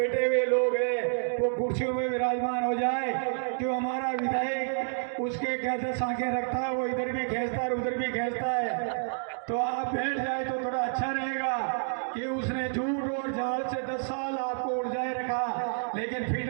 हुए लोग हैं वो कुर्सियों में विराजमान हो जाए। जो हमारा विधायक उसके क्या आंखें रखता है, वो इधर भी खींचता है उधर भी खींचता है। तो आप बैठ जाए तो थोड़ा अच्छा रहेगा कि उसने झूठ और जाल से 10 साल आपको उलझाए रखा, लेकिन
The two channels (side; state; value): left; silent; digital silence